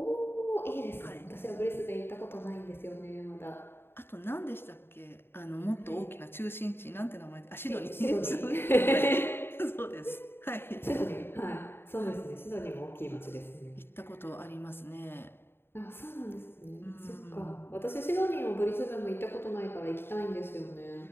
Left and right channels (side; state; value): right; late; 0.11 ms